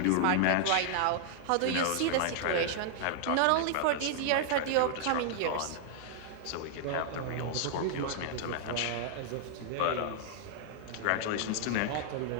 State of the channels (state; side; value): different; both; correlation -0.01